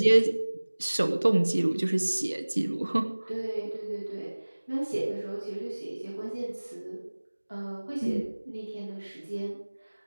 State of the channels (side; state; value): both; inverted; correlation -1.00